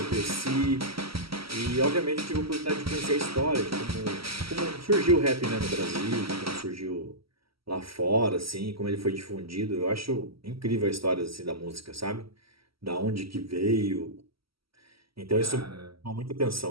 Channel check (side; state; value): left; late; 0.75 ms